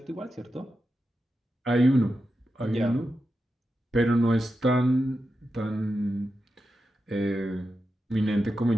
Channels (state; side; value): normal; both; correlation 0.89